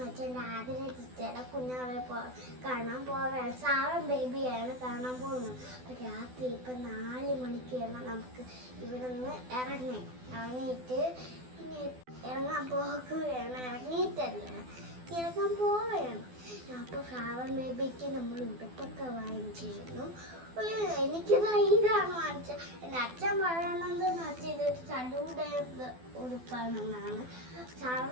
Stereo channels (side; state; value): left; late; 12 ms